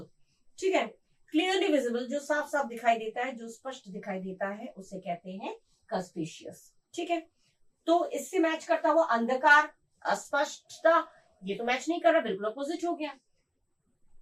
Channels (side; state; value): both; identical; correlation 1.00